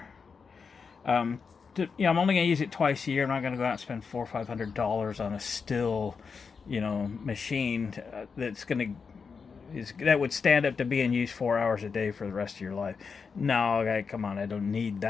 I'm only going to use it twice a year. I'm not going to go out and spend $400 or $500 on a still, machine that would stand up to being used 4 hours a day for the rest of your life. No, come on, I don't need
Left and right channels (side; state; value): right; quieter; 5.5 dB